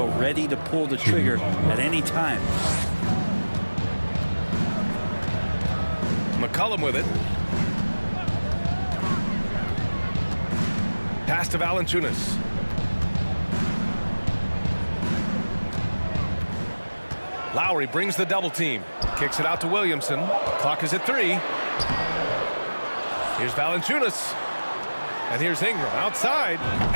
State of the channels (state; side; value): inverted; both; correlation -1.00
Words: ready to pull the trigger at any time. McCollum with it. Pass to Valanciunas. Lowry brings the double team. Kicks it out to Williamson. Clock is at 3. Here's Valanciunas. And here's Ingram outside.